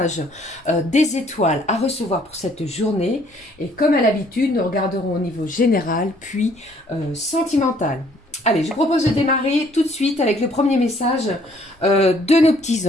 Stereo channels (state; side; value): normal; both; correlation 0.62